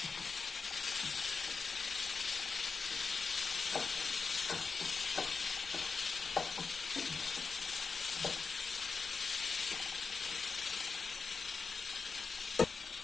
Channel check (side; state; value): right; quieter; 4.8 dB